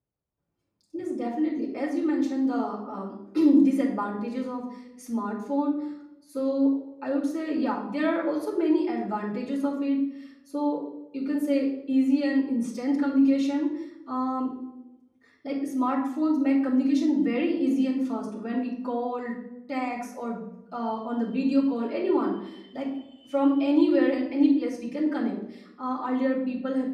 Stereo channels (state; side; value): identical; both; correlation 1.00